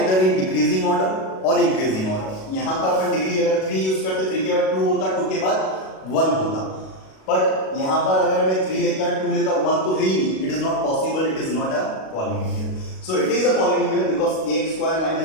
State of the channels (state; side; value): late; right; 37 ms